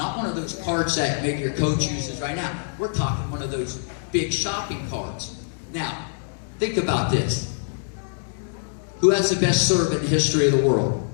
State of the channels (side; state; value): right; silent; 62 dB below the other